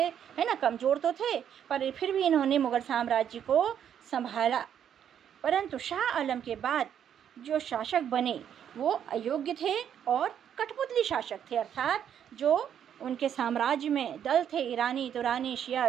है ना, कमज़ोर तो थे पर फिर भी इन्होंने मुग़ल साम्राज्य को संभाला। परंतु शाह आलम के बाद जो शासक बने वो अयोग्य थे और कठपुतली शासक थे, अर्थात जो उनके साम्राज्य में दल थे, ईरानी, तुरानी, शिया,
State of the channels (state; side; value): quieter; left; 9.1 dB